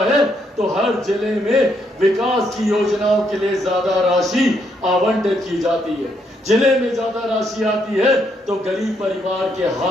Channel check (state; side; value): normal; both; correlation 0.74